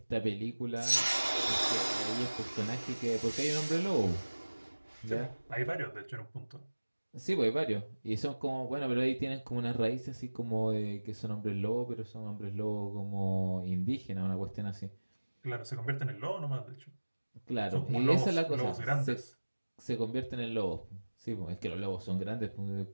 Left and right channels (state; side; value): inverted; both; correlation -1.00